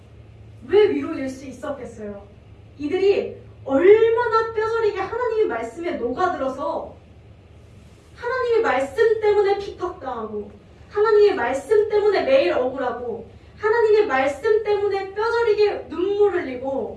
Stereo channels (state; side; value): identical; both; correlation 1.00